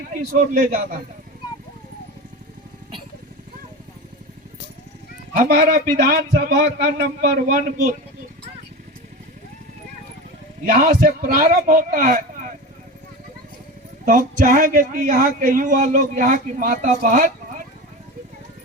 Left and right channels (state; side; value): normal; both; correlation 0.27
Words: किस ओर ले जाना है। हमारा विधानसभा का नंबर 1 बूथ यहाँ से प्रारंभ होता है, तो हम चाहेंगे कि यहाँ के युवा लोग, यहाँ की माता बहन